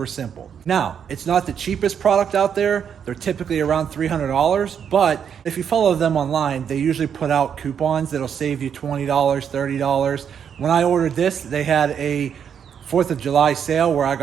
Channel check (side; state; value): left; quieter; 7.9 dB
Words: simple. Now, it's not the cheapest product out there. They're typically around $300, but if you follow them online, they usually put out coupons that'll save you $20, $30. When I ordered this, they had a 4th of July sale where I